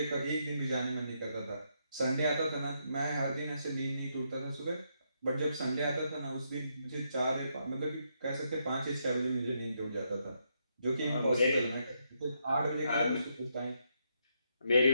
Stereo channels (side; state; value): both; inverted; correlation -0.78